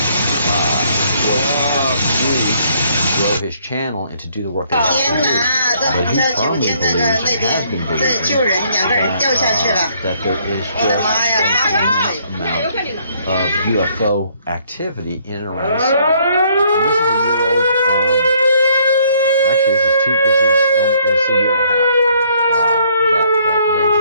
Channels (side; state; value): both; inverted; correlation -0.65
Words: was grow his channel and to do the work that he's doing. But he firmly believes and has been believing that there is just a tremendous amount of UFO activity in and around the sun. And this is a year-old, actually this is a year and a half that